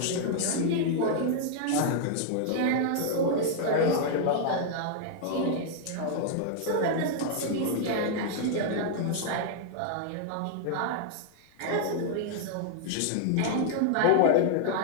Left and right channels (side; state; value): both; different; correlation -0.01